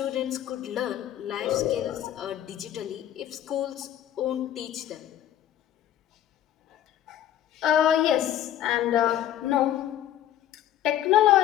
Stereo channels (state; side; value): quieter; right; 11.6 dB